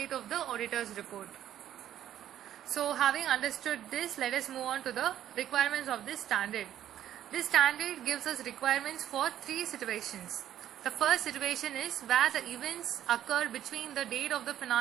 of the auditor's report. So having understood this, let us move on to the requirements of this standard. This standard gives us requirements for three situations. The first situation is where the events occur between the date of the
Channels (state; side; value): quieter; left; 11.4 dB